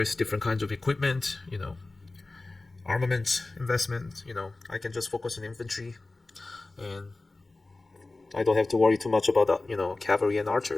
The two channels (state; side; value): quieter; right; 3.2 dB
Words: different kinds of equipment, armament investment. I can just focus on infantry, and I don't have to worry too much about cavalry and